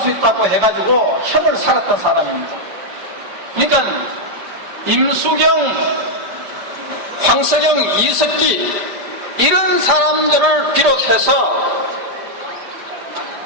있다고 해가지고 협을 살았던 사람입니다. 그러니까 임수경, 황석영, 이석기 이런 사람들을 비롯해서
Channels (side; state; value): left; late; 5.0 ms